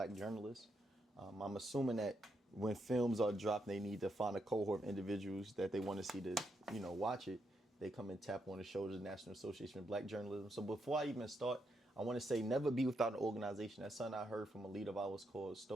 Journalists. I'm assuming that when films are dropped, they need to find a cohort of individuals that they want to see to, watch it. They come and tap on the shoulders of the National Association of Black Journalism. So before I even start, I want to say never be without an organization. That's something I heard from a leader of ours called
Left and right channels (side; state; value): both; normal; correlation 0.80